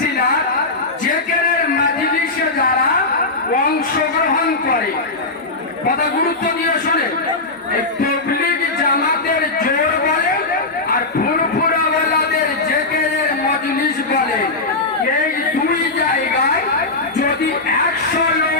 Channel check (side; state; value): right; quieter; 3.3 dB